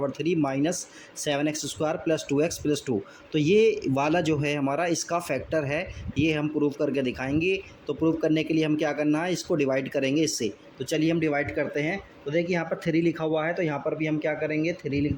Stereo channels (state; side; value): identical; both; correlation 1.00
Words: 3 minus 7x² plus 2x plus 2। तो ये वाला जो है हमारा इसका फैक्टर है, ये हम प्रूव करके दिखाएंगे। तो प्रूव करने के लिए हम क्या करना है, इसको डिवाइड करेंगे इससे। तो चलिए हम डिवाइड करते हैं। तो देखिए यहाँ पर 3 लिखा हुआ है, तो यहाँ पर भी हम क्या करेंगे, 3 लिख